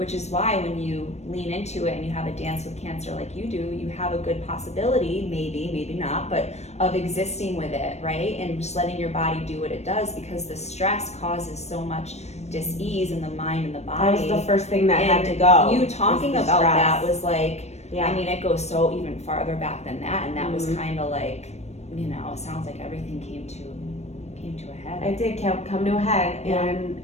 is why when you lean into it and you have a dance with cancer like you do, you have a good possibility, maybe not, but of existing with it, right? And just letting your body do what it does, because the stress causes so much dis-ease in the mind and the body. That was the first thing that had to go. And you talking about stress. that was like, yeah. I mean, it goes so even farther back than that, and that was kind of like, it sounds like everything came to a head. It did come to a head, and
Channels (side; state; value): right; late; 0.32 ms